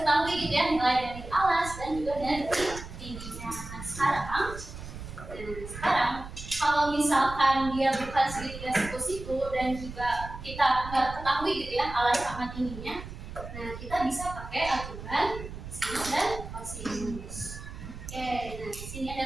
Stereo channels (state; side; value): noise; right; rumble, 11 dB below the sound